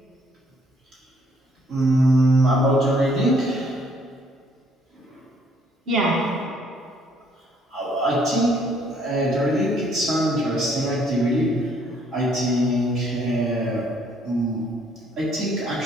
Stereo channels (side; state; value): both; normal; correlation 0.65